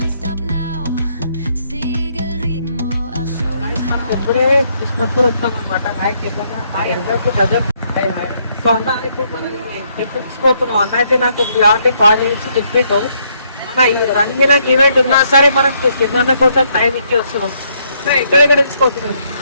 ఇప్పుడే కిస్మత్పూర్ వచ్చాం అనమాట. సో అన్న అయితే మనం ట్రిప్ తీసుకుపోతున్నాం. అన్న అయితే నాకు ఆల్రెడీ కాల్ చేసి చెప్పిండు, మన ఈ రంగిన ఈవెంట్ ఉన్నా సరే మనం కింద కోసం టైం ఇచ్చి వస్తున్నాం. ఎక్కడెక్కడ తీసుకుపోతున్నాం,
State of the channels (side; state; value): both; inverted; correlation -0.72